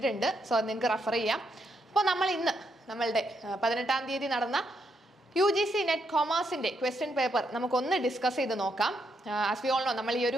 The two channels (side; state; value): both; normal; correlation 0.78